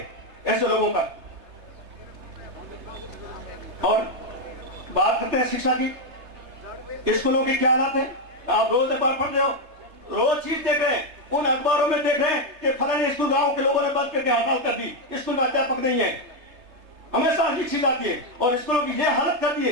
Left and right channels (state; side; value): late; left; 3.3 ms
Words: ऐसे लोगों का। और बात करते हैं शिक्षा की, स्कूलों की क्या हालत है? आप रोज अखबार पढ़ रहे हो, रोज चीज देख रहे हैं, उन अखबारों में देख रहे हैं कि फलाने स्कूल गांव के लोगों ने बंद करके हड़ताल कर दी, स्कूल में अध्यापक नहीं है। हमेशा ये चीज आती है और स्कूलों की ये हालत कर दी